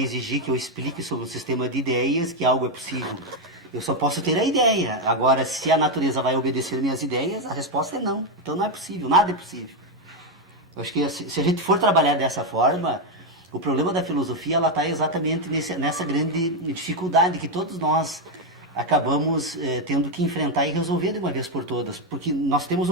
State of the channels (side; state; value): both; normal; correlation 0.05